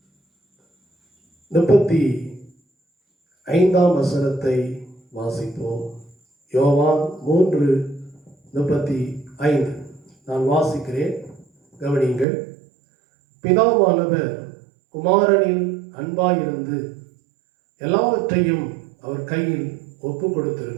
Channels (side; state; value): left; drops out; at 12.2 s